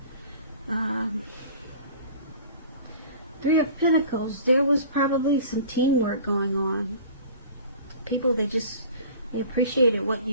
Three of Pentacles, there was probably some teamwork going on. People, they appreciated what you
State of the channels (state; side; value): inverted; both; correlation -0.43